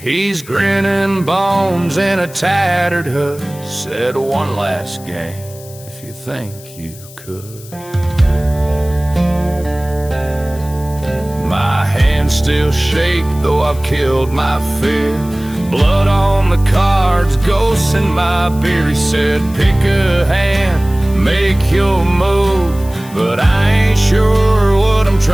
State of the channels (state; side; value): noise; left; hiss, 20 dB below the sound